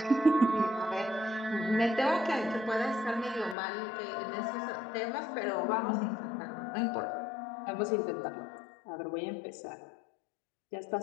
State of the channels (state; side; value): drops out; right; at 3.6 s